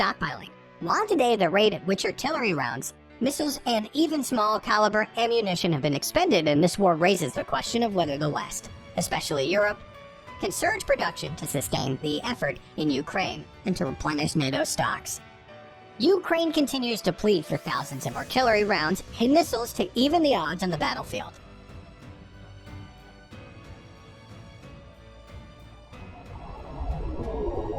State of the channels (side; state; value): both; identical; correlation 1.00